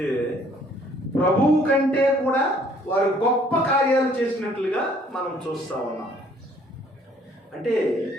ప్రభువు కంటే కూడా వారు గొప్ప కార్యాలు చేసినట్లుగా మనం చూస్తా ఉన్నాం. అంటే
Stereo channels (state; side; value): normal; both; correlation 0.60